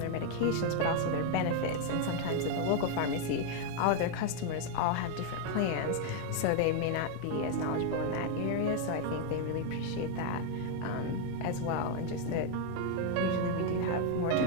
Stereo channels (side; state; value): both; different; correlation 0.00